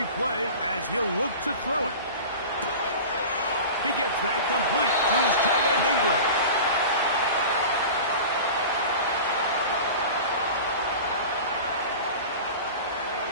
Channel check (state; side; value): inverted; both; correlation -0.34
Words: play as he'll look to throw it. He gets that complete to his tight end Ingram.